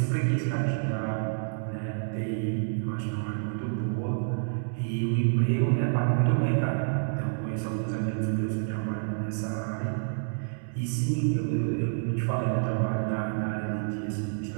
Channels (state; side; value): silent; left; digital silence